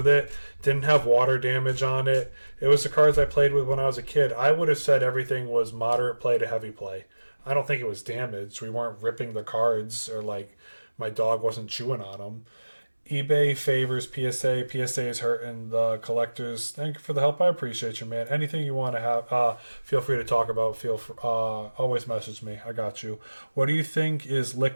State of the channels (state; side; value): inverted; both; correlation -1.00